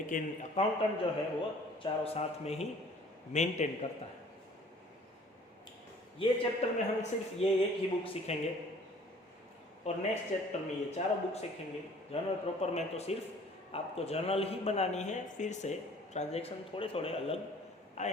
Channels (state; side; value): normal; both; correlation 0.53